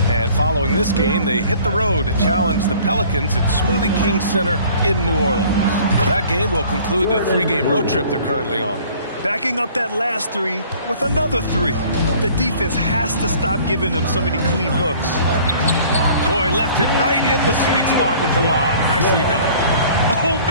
And following this game, they hit the road to challenge the Pelicans at Smoothie King Center in New Orleans. That game will conclude the 3-game road trip they're currently on. Backing up that last 3 with another 3. The defense has to stop giving them so many clean looks. Boy, left it right in the sweet spot with the lob. Nicely done. Oh,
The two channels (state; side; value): inverted; both; correlation -0.51